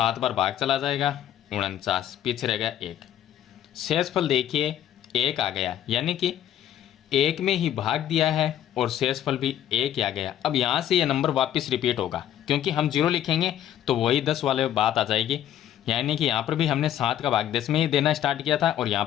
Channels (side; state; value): right; quieter; 11.3 dB